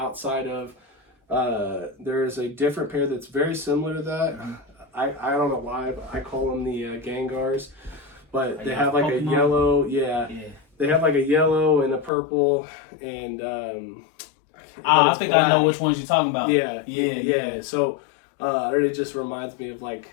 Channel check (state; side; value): drops out; right; at 12.1 s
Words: of there is a different pair that's very similar to that. I don't know why, but I call them the Gangars, but they have like a yellow. Yeah, they have like a yellow and a purple and I think black. I know which ones you're talking about. Yeah. So it really just reminds me of like